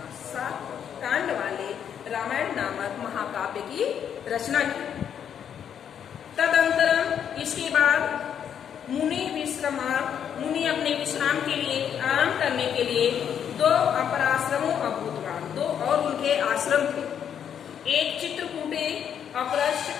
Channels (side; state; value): right; quieter; 8.6 dB